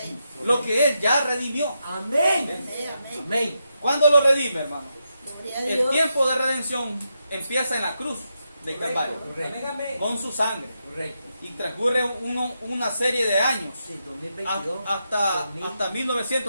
lo que Él ya redimió. Amén. ¿Cuándo lo redime, hermano? El tiempo de redención empieza en la cruz de Calvario, con su sangre. Y transcurre una serie de años hasta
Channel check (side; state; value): both; inverted; correlation -0.84